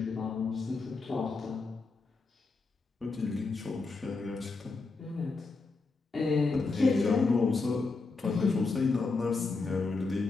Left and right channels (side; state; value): right; quieter; 4.0 dB